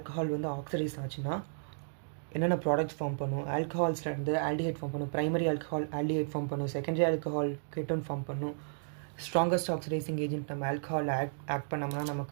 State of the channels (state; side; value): silent; left; digital silence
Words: வந்து ஆக்சிடைஸ் ஆச்சுன்னா என்னென்ன ப்ராடக்ட்ஸ் ஃபார்ம் பண்ணும், ஆல்கஹால்ஸ்லேருந்து ஆல்டிஹைட் ஃபார்ம் பண்ணும், ப்ரைமரி ஆல்கஹால் ஆல்டிஹைட் ஃபார்ம் பண்ணும், செகண்டரி ஆல்கஹால் கெட்டோன் ஃபார்ம் பண்ணும், ஸ்ட்ராங்கஸ்ட் ஆக்சிடைசிங் ஏஜென்ட் நம்ம ஆல்கஹால் ஆக்ட் பண்ணோம்னா